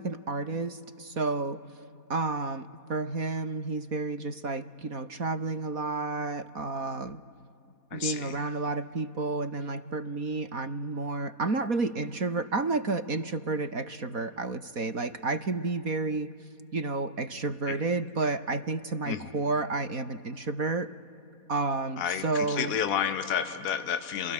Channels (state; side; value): late; left; 4.2 ms